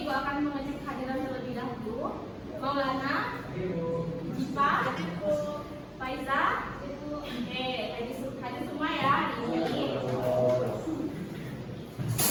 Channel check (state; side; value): identical; both; correlation 1.00